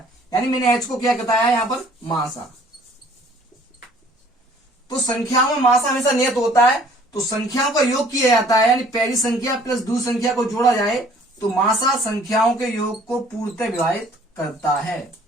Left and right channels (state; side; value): normal; both; correlation 0.56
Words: यानी मैंने h को क्या बताया है यहां पर? मासा। तो संख्याओं में मासा हमेशा नियत होता है, तो संख्याओं का योग किया जाता है, यानी पहली संख्या प्लस दूसरी संख्या को जोड़ा जाए तो मासा संख्याओं के योग को पूर्णतः विभाजित करता है।